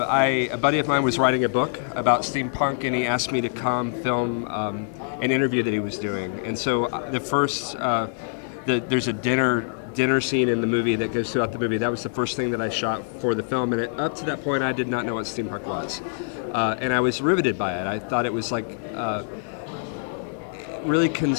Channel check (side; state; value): right; silent; digital silence